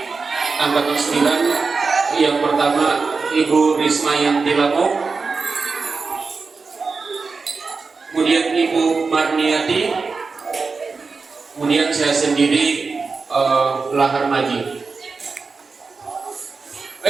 Angkatan 9. Yang pertama Ibu Risma Yanti Lamo, kemudian Ibu Marniati, kemudian saya sendiri Lahar Maji.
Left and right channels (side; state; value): left; quieter; 4.5 dB